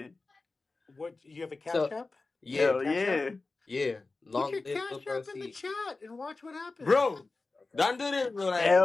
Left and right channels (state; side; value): quieter; right; 3.6 dB